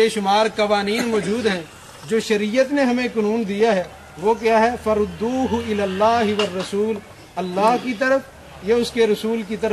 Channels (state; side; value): identical; both; correlation 1.00